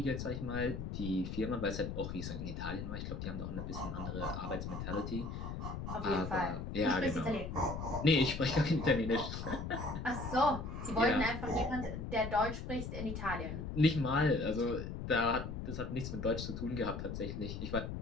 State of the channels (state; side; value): noise; left; rumble, 6 dB below the sound